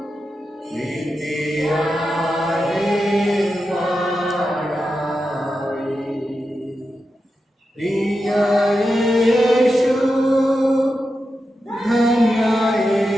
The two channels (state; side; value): normal; both; correlation 0.89